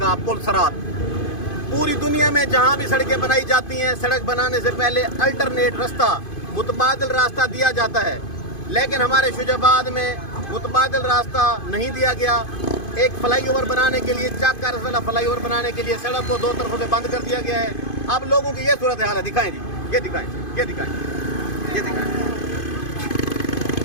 पुल सरात। पूरी दुनिया में जहाँ भी सड़कें बनाई जाती हैं, सड़क बनाने से पहले अल्टरनेट रास्ता, मुतबादल रास्ता दिया जाता है, लेकिन हमारे शुजाबाद में मुतबादल रास्ता नहीं दिया गया। एक फ्लाईओवर बनाने के लिए, चाक का रसला फ्लाईओवर बनाने के लिए सड़क को दो तरफों से बंद कर दिया गया है। अब लोगों की ये सूरत हाल है, दिखाएं जी, ये दिखाएं, ये दिखाएं, ये दिखाएं।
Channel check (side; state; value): right; late; 2.5 ms